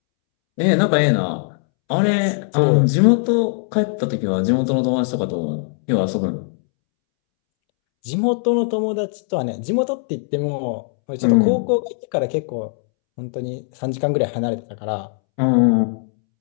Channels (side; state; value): right; silent; 66 dB below the other